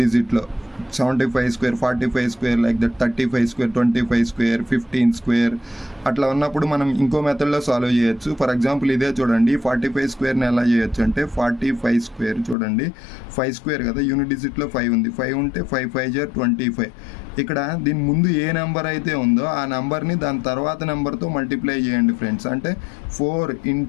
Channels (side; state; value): right; drops out; at 12.6 s